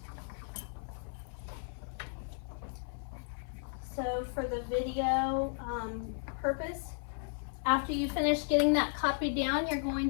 So for the video purpose, after you finish getting that copied down, you're going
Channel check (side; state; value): right; silent; 55 dB below the other